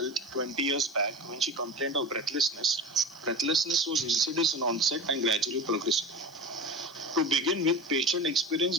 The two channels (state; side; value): noise; left; hiss, 26 dB below the sound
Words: 20 years back when she complained of breathlessness. Breathlessness was insidious in onset and gradually progressive. To begin with, patient